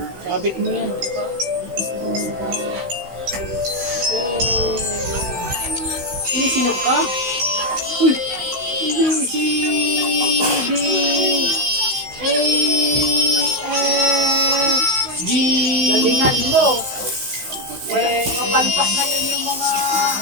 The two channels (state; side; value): late; left; 16 ms